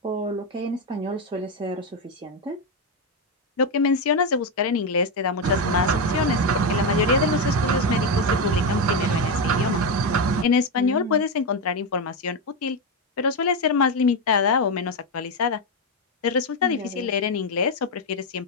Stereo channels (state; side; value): normal; both; correlation 0.08